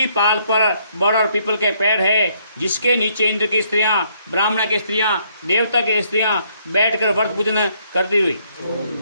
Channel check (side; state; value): both; inverted; correlation -0.69